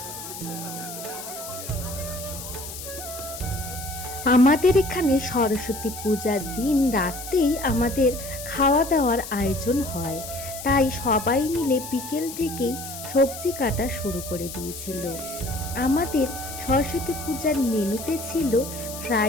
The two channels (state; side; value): noise; left; hiss, 10 dB below the sound